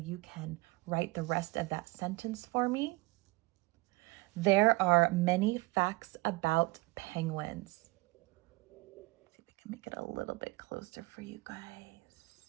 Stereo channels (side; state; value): left; quieter; 23.7 dB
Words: can write the rest of that sentence for me. There are many facts about penguins. Let's see if I can make it a little bit closer for you